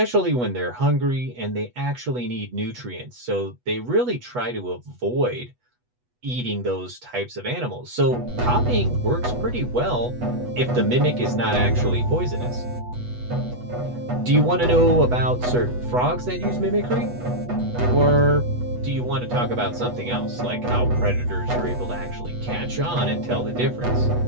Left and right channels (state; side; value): late; left; 8.2 ms